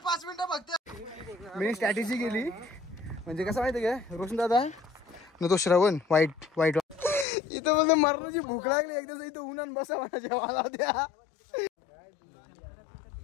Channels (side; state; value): right; drops out; at 7.2 s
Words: 5 मिनिटं बघते. मी स्ट्रॅटेजी केली म्हणजे कसं माहिती का रोशन दादा न तो श्रवण वाईट इथं मला मरणाची भूक लागली. एकदा इथं उन्हान बसा मला जेवायला द्या.